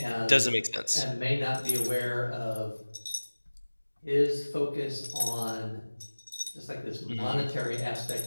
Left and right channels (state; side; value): inverted; both; correlation -1.00